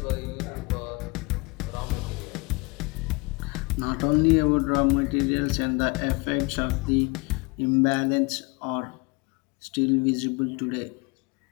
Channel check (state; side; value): quieter; right; 27.5 dB